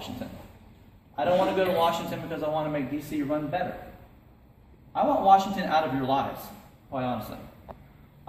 I don't want to go to Washington because I want to make D.C. run better. I want Washington out of your lives, quite honestly.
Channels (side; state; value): both; identical; correlation 1.00